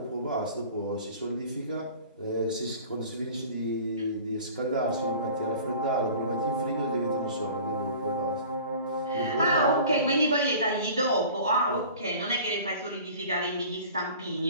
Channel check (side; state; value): both; inverted; correlation -0.44